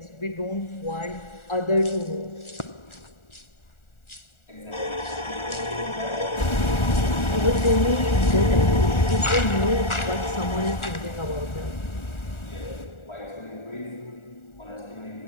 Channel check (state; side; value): late; right; 1.4 ms